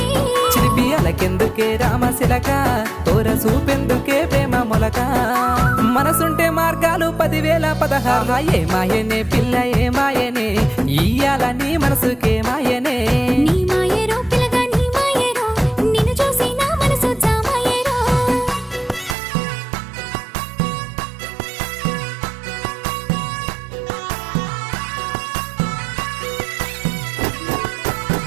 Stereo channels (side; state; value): left; drops out; at 19.2 s